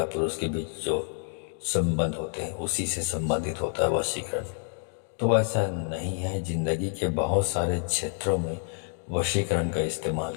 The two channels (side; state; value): right; silent; 59 dB below the other